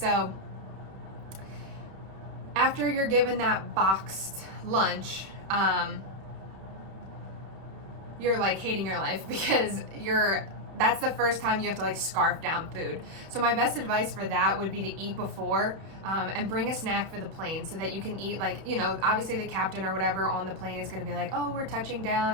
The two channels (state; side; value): late; left; 31 ms